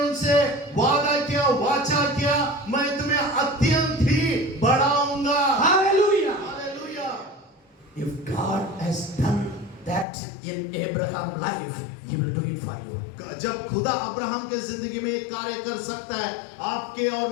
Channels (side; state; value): right; drops out; at 10.1 s